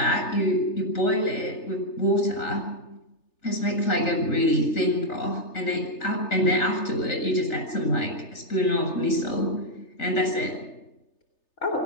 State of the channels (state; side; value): late; right; 3.3 ms